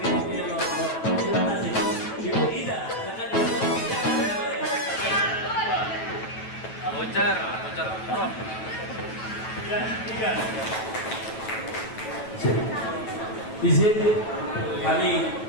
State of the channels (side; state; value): right; late; 9.1 ms